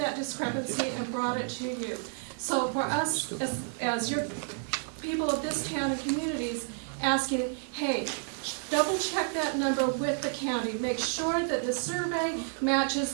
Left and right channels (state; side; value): silent; left; 58 dB below the other